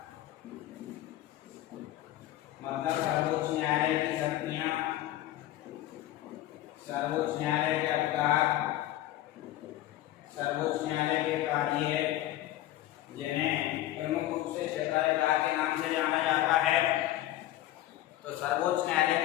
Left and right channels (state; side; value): quieter; right; 14.5 dB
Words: मतलब सर्वोच्च न्यायालय की शक्तियां, सर्वोच्च न्यायालय के अधिकार, सर्वोच्च न्यायालय के कार्य, जिन्हें प्रमुख रूप से क्षेत्राधिकार के नाम से जाना जाता है। तो सर्वोच्च